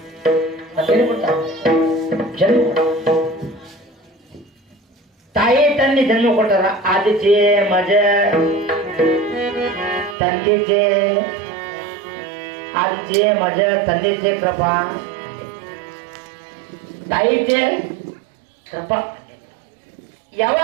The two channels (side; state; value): left; drops out; at 10.2 s